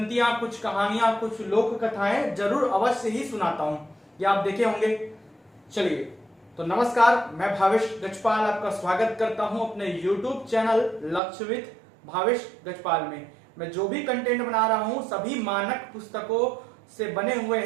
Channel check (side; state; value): left; drops out; at 11.2 s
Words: कुछ कहानियां, कुछ लोक कथाएं जरूर अवश्य ही सुनाता हूं। ये आप देखे होंगे। चलिए तो नमस्कार, मैं भावेश गजपाल आपका स्वागत करता हूं अपने YouTube चैनल लक्ष्य विद भावेश गजपाल में। मैं जो भी कंटेंट बना रहा हूं सभी मानक पुस्तकों से बने हुए